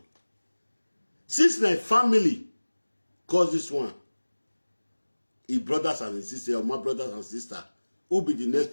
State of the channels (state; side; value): inverted; both; correlation -1.00